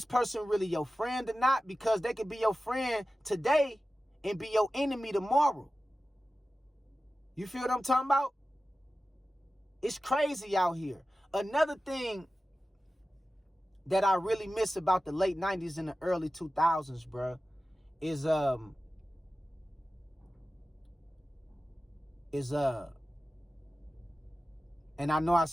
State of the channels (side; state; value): both; normal; correlation 0.95